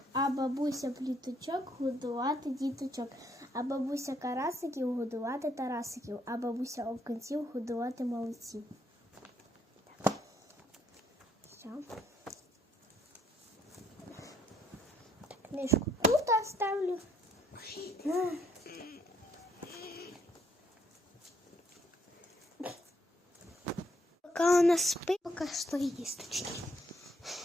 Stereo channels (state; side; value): normal; both; correlation 0.69